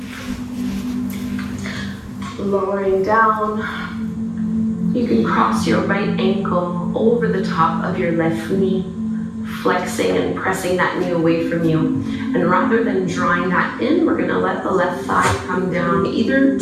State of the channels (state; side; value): identical; both; correlation 1.00